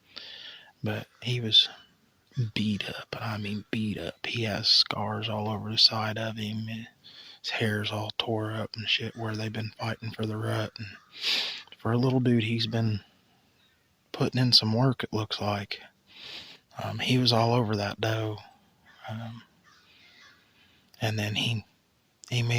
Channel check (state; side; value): identical; both; correlation 1.00